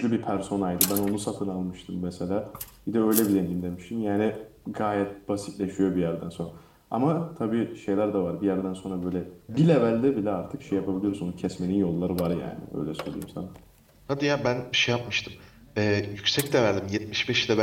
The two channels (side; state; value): both; identical; correlation 1.00